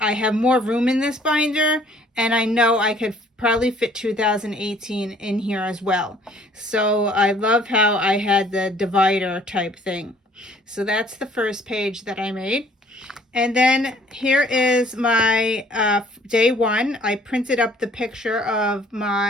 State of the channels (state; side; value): normal; both; correlation 0.58